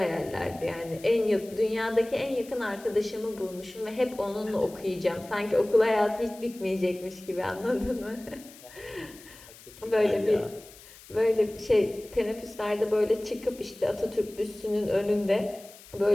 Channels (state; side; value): noise; left; hiss, 20 dB below the sound